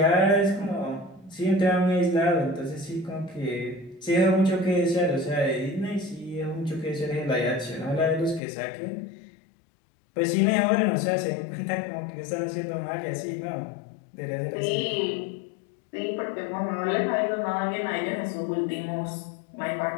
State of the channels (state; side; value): drops out; right; at 8.4 s